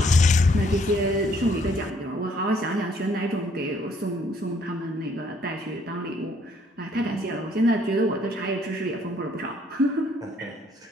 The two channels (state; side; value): normal; both; correlation 0.65